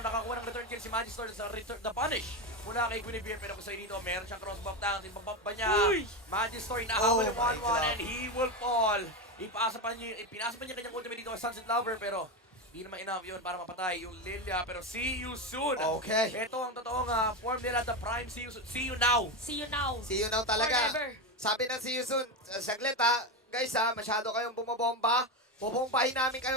nakakuha ng return kill si Magistor sa return, the punish. Mula kay Guinevere, pero kung sa'yo dito, meron siyang cross-buff down. Tinpabump ba niya? Magistor, inahabol yung 1-1 and he will fall. Pinasa pa niya kanyang ultimate dito sa Sunset Lover, pero hindi naman enough yun para mapatay yung Lilia. Pero see you soon. Okay. Ito ang totoong form nila, the prime see you soon. See you now. See you now. See you now talaga. Forever. Sabi ng See You Soon, saglit ha, guys ha, masyado kayong bumabomba. Bubombahin namin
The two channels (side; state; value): both; normal; correlation 0.14